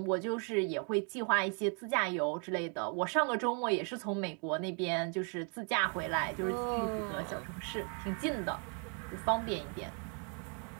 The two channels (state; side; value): quieter; left; 39.4 dB